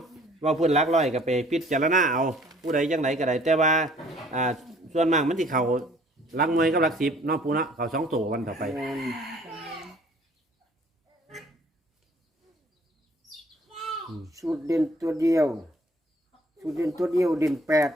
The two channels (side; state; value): both; normal; correlation 0.56